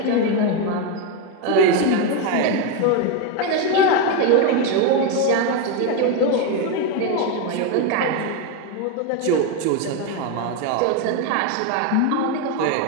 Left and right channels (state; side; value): different; both; correlation 0.03